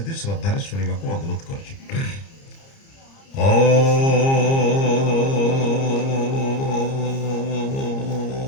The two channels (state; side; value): late; right; 30 ms